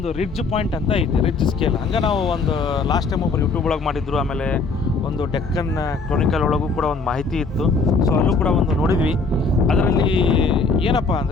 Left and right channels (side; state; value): right; quieter; 4.1 dB